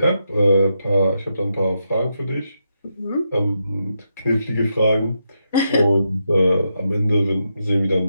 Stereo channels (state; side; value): inverted; both; correlation -0.83